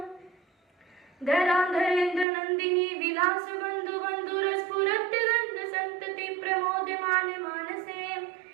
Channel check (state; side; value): drops out; left; at 2.2 s